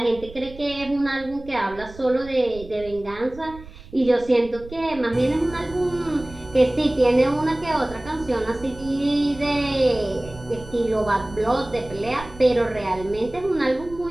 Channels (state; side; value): noise; right; rumble, 17 dB below the sound